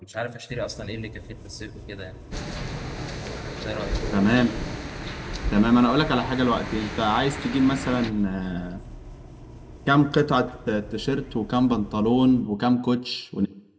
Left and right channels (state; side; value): identical; both; correlation 1.00